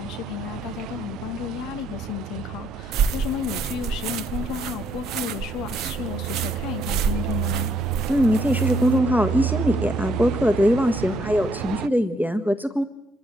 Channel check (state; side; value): normal; both; correlation 0.71